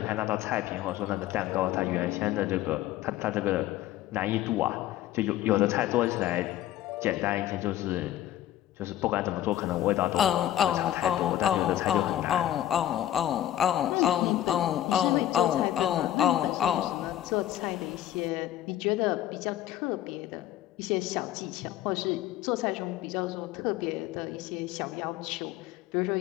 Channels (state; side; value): quieter; right; 12.8 dB